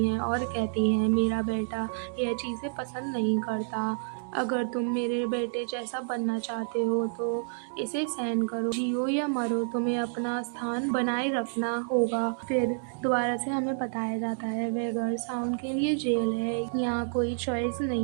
हैं और कहती हैं, मेरा बेटा यह चीज़ें पसंद नहीं करता। अगर तुम मेरे बेटे जैसा बनना चाहते हो तो इसे सहन करो। जियो या मरो, तुम्हें अपना स्थान बनाए रखना होगा। फिर दोबारा से हमें बताया जाता है वह घर साउंड के लिए जेल है। यहाँ कोई चॉइस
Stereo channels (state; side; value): silent; left; digital silence